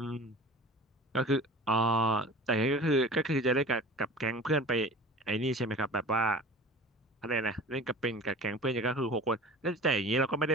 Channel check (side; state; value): both; normal; correlation 0.39